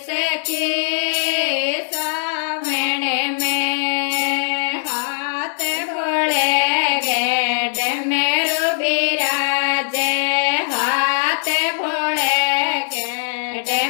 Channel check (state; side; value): silent; right; 66 dB below the other